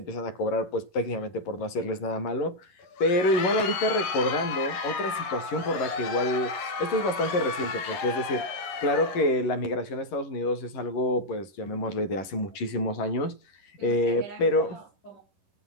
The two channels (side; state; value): right; late; 11 ms